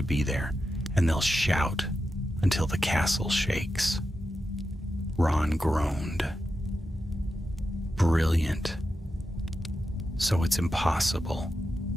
be there, and they'll shout until the castle shakes. Ron groaned. Brilliant. So it's impossible.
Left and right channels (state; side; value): normal; both; correlation 0.89